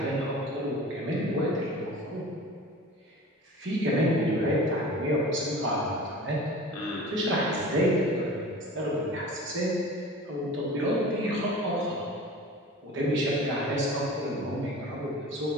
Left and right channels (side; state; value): both; normal; correlation 0.38